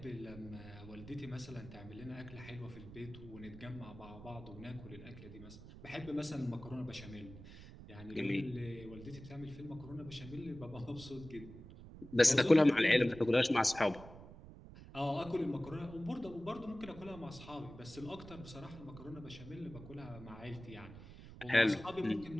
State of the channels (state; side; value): noise; right; rumble, 15 dB below the sound